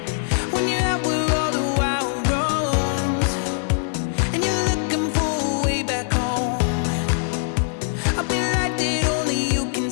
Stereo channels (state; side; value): silent; right; digital silence